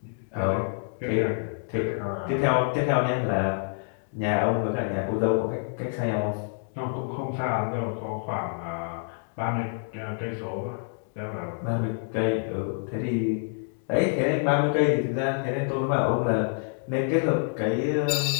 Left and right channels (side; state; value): right; silent; digital silence